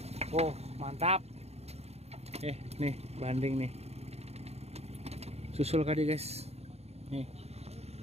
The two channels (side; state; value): left; late; 0.30 ms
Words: Oh, mantap. Nih, Banding nih. Susul kadi guys. Nih.